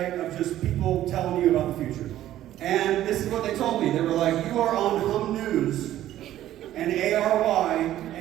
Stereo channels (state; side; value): quieter; left; 13.1 dB